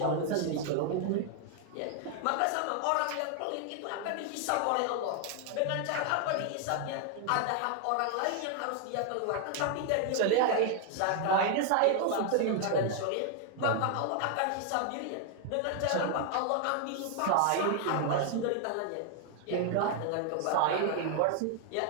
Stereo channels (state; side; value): different; both; correlation 0.00